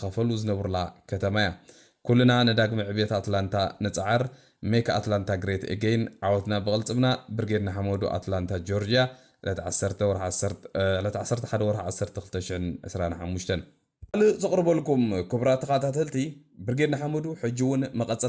زنبرلا كتمايا كلنا نداق معبيت أتلانتا نتعر ميك أتلانتا جريت إجين عوتنا بغلطبنا برجيرنا حمودو أتلانتا جورجيا لا تعسرت حد ورح عسرت خلتشن أسرانا حموشتن زقرب لكم كبرات قاتلتي برجيرنا حمودو حجون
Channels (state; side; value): identical; both; correlation 1.00